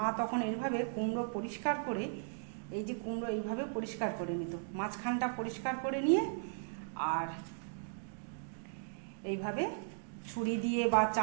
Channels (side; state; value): left; silent; digital silence